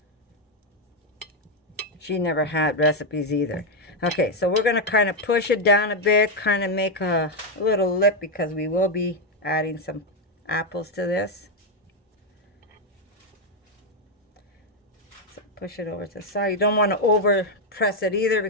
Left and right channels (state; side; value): normal; both; correlation 0.04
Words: She never had recipes either. Okay, so we're going to kind of push it down a bit, kind of make a little lip because we will be adding some apples to this. So push it over to the side. You don't want to over press it either